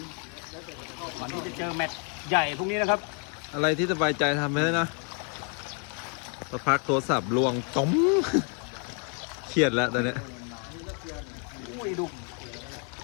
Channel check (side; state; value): right; quieter; 39.4 dB